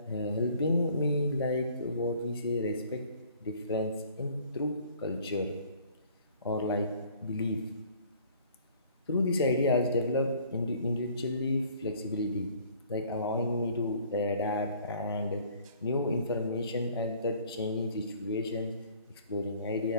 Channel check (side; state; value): both; inverted; correlation -0.55